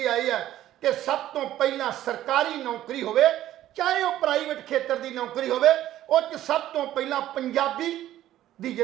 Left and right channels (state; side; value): quieter; left; 13.2 dB